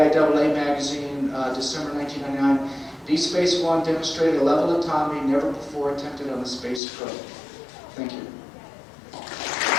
magazine, December 1999. Deep Space One demonstrated a level of autonomy never before attempted on the space probe. Thank you.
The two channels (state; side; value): drops out; right; at 6.8 s